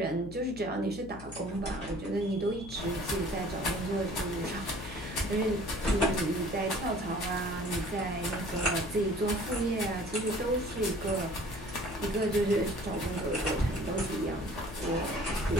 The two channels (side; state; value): left; noise; hum, 15 dB below the sound